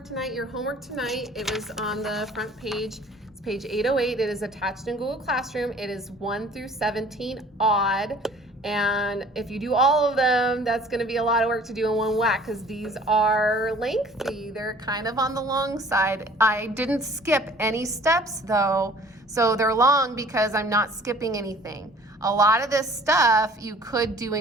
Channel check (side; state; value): both; normal; correlation 0.51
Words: tonight. Your homework tonight, it was on the front page. It's page 808. It is attached in Google Classroom. It is 1 through 17 odd. And if you do all of them, that's going to be a lot of work to do in one whack because these are lengthy. They're kind of on the long side. I didn't skip any steps though, so they're long because I'm not skipping anything. A lot of this stuff you could do